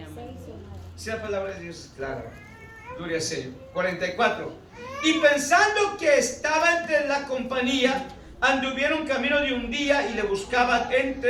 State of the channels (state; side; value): identical; both; correlation 1.00